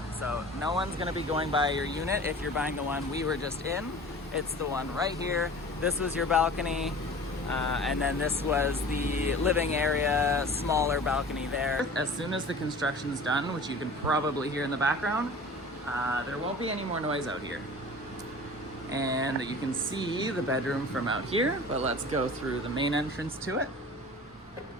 so no one's gonna be going by your unit if you're buying the one we were just in. It's the one right here. This was your balcony. And then this was the living area, smaller balcony there. As soon as the construction's done, which you can probably hear in the background, there won't be any more noise out here. And you can see the bedroom from out here, but let's go through the main entrance to it.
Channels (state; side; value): normal; both; correlation 0.41